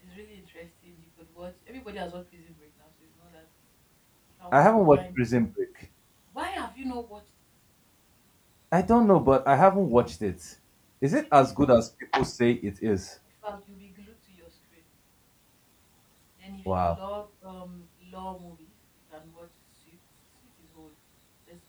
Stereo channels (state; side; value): identical; both; correlation 1.00